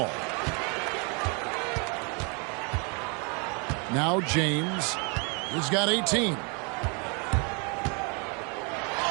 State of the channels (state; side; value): quieter; left; 34.4 dB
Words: Now James. He's got 18.